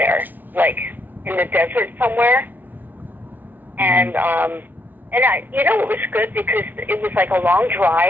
like in the desert somewhere. And it was good because it was like a long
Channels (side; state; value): left; late; 0.087 ms